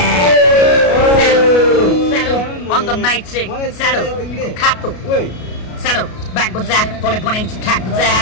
On the night sick, saddle, kato, saddle, back with that, tole poning to cat with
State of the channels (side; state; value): right; late; 33 ms